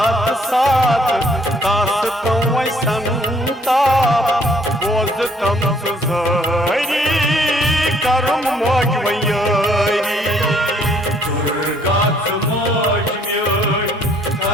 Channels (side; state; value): both; normal; correlation 0.63